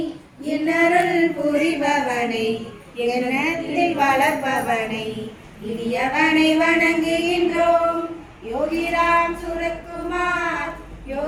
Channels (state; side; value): identical; both; correlation 1.00